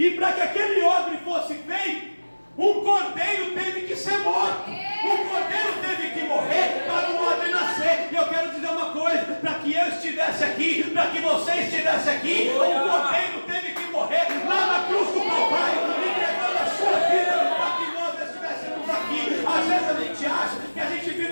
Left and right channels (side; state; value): both; inverted; correlation -1.00